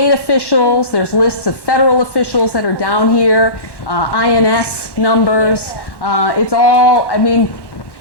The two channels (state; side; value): late; right; 1.1 ms